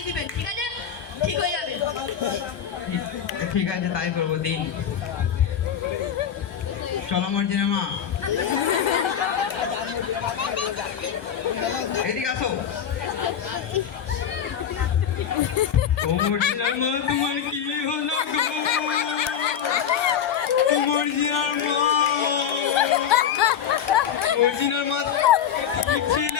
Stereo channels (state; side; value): quieter; right; 8.6 dB